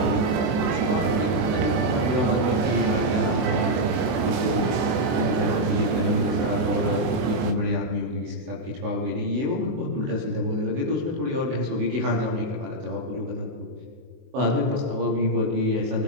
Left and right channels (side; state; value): left; late; 24 ms